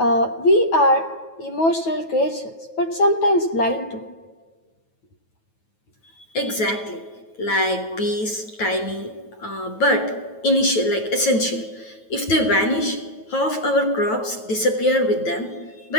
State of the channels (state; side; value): late; right; 9.2 ms